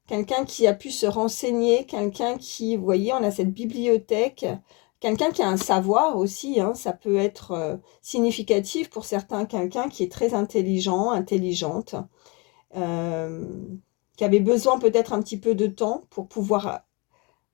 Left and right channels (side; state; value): right; quieter; 29.0 dB